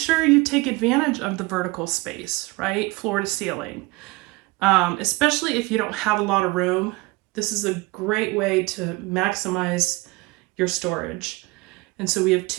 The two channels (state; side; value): quieter; left; 23.4 dB